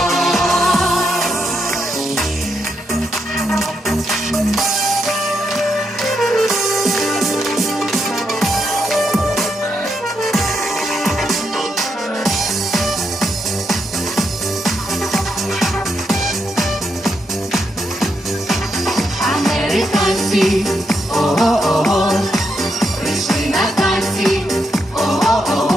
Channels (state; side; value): normal; both; correlation 0.81